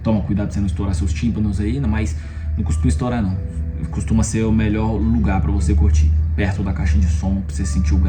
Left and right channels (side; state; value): both; identical; correlation 1.00